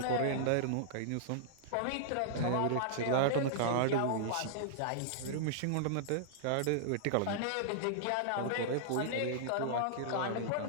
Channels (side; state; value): both; different; correlation -0.01